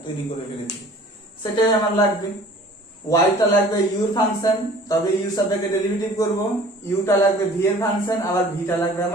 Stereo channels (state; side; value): normal; both; correlation 0.49